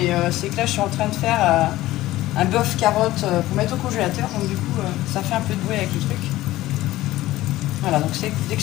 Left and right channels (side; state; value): right; quieter; 16.4 dB